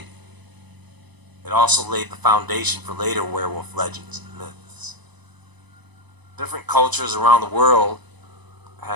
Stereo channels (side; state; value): left; late; 1.0 ms